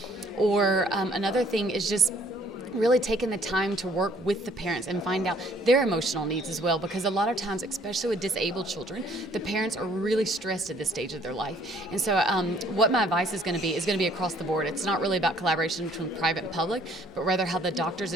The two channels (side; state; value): both; normal; correlation 0.60